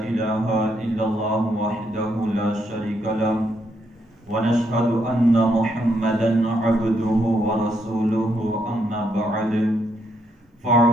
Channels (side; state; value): both; normal; correlation 0.76